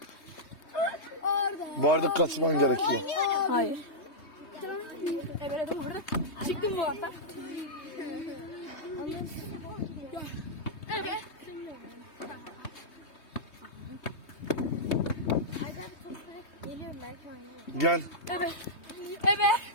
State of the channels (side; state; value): right; late; 3.2 ms